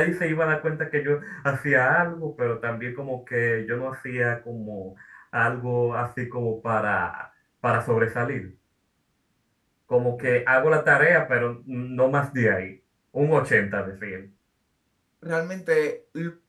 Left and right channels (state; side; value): identical; both; correlation 1.00